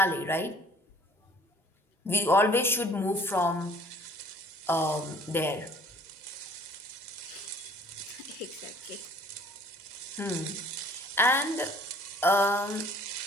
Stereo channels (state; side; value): normal; both; correlation 0.53